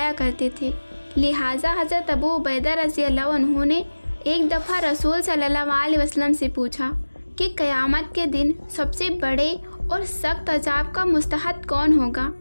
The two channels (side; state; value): both; inverted; correlation -1.00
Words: کرتے تھے۔ لہٰذا حضرت ابو عبیدہ رضی اللہ عنہ نے ایک دفعہ رسول صلی اللہ علیہ وسلم سے پوچھا کہ قیامت کے دن سب سے بڑے اور سخت عذاب کا مستحق کون ہوگا؟